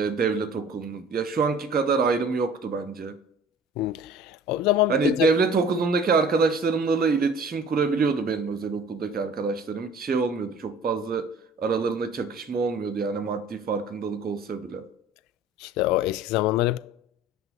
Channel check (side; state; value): both; normal; correlation 0.47